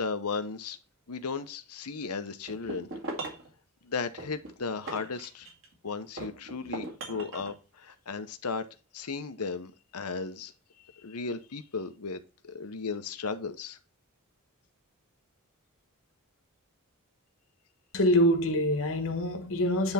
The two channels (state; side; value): normal; both; correlation -0.01